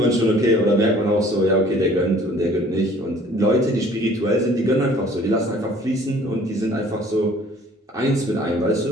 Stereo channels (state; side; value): normal; both; correlation 0.54